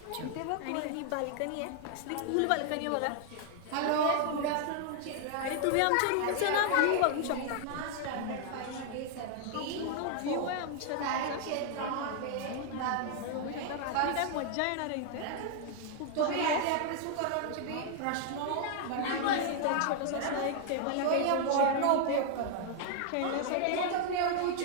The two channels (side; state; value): both; different; correlation 0.00